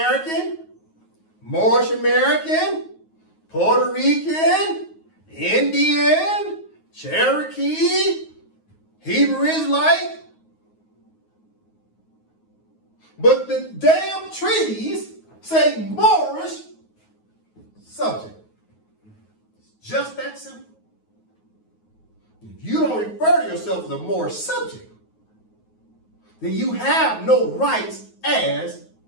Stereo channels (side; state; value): right; late; 9.4 ms